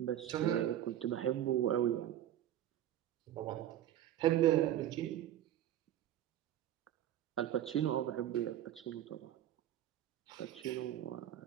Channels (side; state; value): left; quieter; 12.0 dB